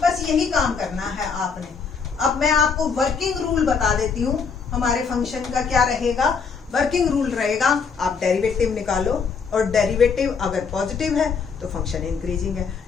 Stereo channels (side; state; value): right; quieter; 5.7 dB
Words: बस यही काम करना है आपने। अब मैं आपको वर्किंग रूल बता देती हूँ, हमारे फंक्शन का क्या रहेगा। वर्किंग रूल रहेगा, आप डेरिवेटिव निकालो और डेरिवेटिव अगर पॉजिटिव है तो फंक्शन इंक्रीजिंग है,